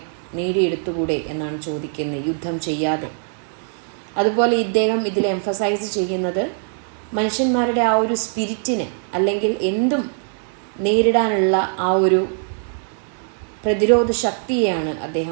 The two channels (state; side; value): silent; left; digital silence